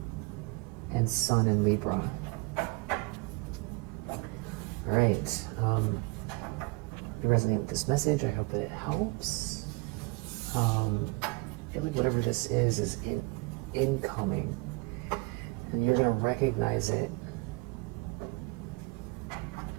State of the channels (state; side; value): quieter; left; 26.9 dB